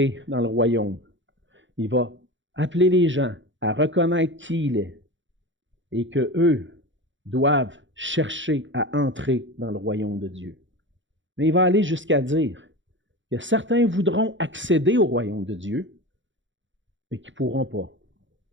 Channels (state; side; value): late; left; 0.55 ms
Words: dans le royaume. Il va appeler les gens à reconnaître qui il est et qu'eux doivent chercher à entrer dans le royaume de Dieu. Mais il va aller jusqu'à dire que certains voudront accéder au royaume de Dieu, mais qui ne pourront pas.